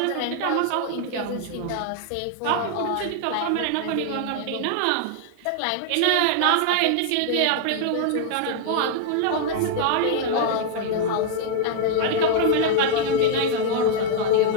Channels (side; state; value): both; different; correlation 0.00